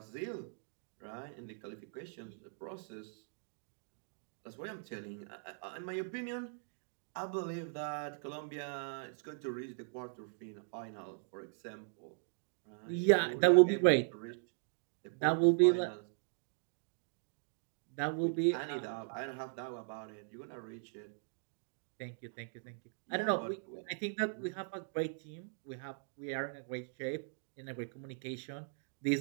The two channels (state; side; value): silent; left; digital silence